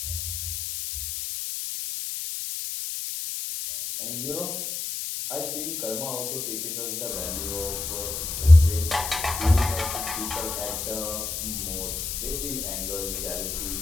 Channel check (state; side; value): noise; left; hiss, 4 dB below the sound